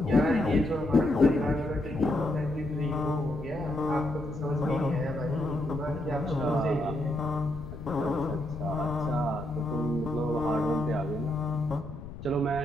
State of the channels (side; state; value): left; noise; rumble, 11 dB below the sound